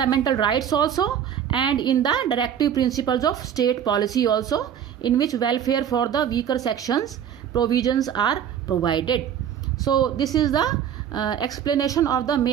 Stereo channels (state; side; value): quieter; left; 9.1 dB